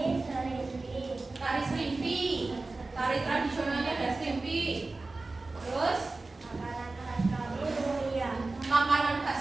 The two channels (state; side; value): quieter; left; 3.4 dB